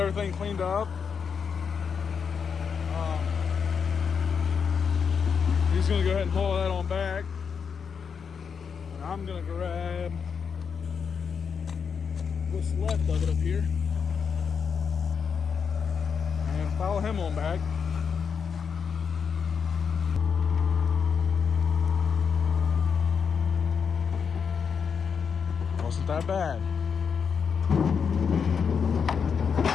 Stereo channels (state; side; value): quieter; right; 6.4 dB